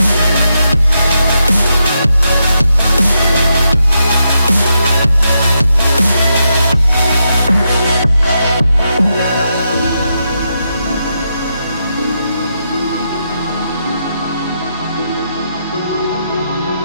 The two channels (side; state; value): both; inverted; correlation -0.83